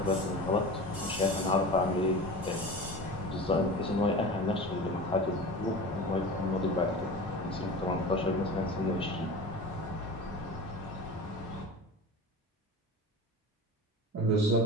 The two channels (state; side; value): normal; both; correlation 0.33